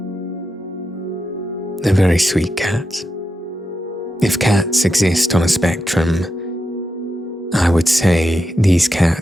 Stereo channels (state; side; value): normal; both; correlation 0.87